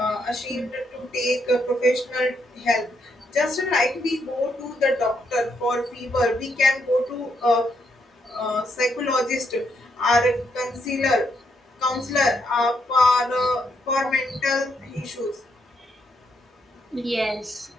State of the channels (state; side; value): normal; both; correlation 0.77